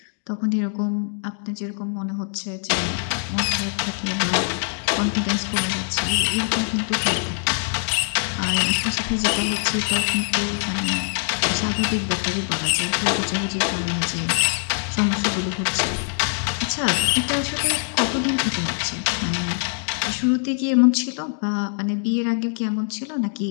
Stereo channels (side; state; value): right; silent; 63 dB below the other